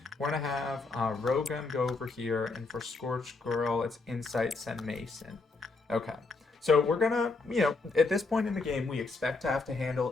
we're going to have Rogan go over here. And for Scorched Girl, it's Insight, send Mason. Okay. So we're going to, you know, at this point in the game, we expect to have to handle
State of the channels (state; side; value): quieter; right; 3.8 dB